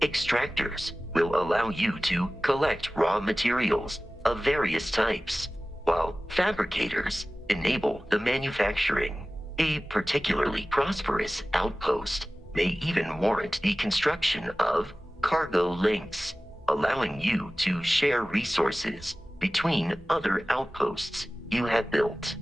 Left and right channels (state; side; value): normal; both; correlation 0.97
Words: extractors will allow you to collect raw materials of various types, while fabricators enable the manufacturing. A particularly prosperous outpost may even warrant the construction of cargo links, allowing you to share resources between other outposts you have built.